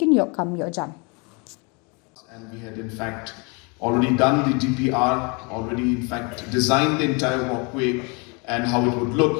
yok kam yok jam. And we had in fact already done the DPR, already in fact designed the entire walkway and how it would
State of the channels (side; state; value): right; quieter; 31.2 dB